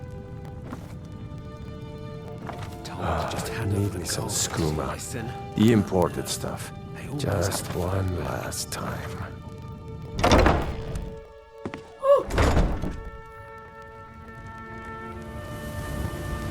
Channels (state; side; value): identical; both; correlation 1.00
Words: Needing some skooma. The imported stuff. Just one last time.